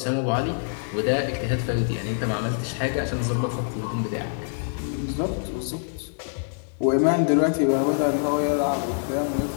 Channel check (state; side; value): silent; right; digital silence